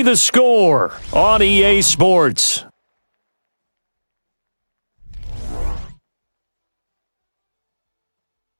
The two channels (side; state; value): both; inverted; correlation -1.00